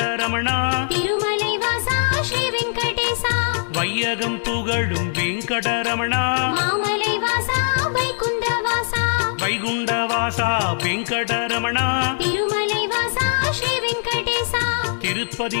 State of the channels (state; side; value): silent; right; digital silence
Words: திருமலைவாசா ஸ்ரீ வெங்கடேசா வையகம் புகழும் வெங்கடரமணா மாமலைவாசா வைகுண்டவாசா வைகுண்டவாசா வெங்கடரமணா திருமலைவாசா ஸ்ரீ வெங்கடேசா